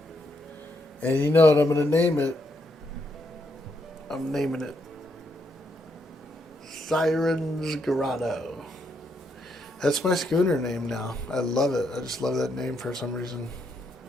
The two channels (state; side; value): normal; both; correlation 0.77